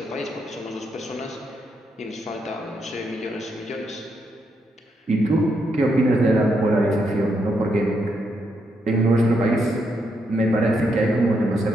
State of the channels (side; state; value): both; normal; correlation 0.79